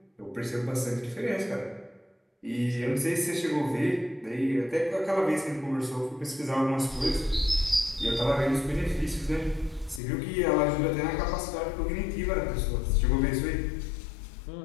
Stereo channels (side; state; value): right; drops out; at 10.0 s